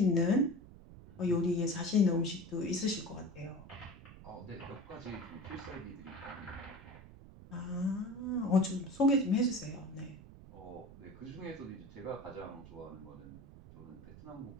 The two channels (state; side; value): noise; right; rumble, 17 dB below the sound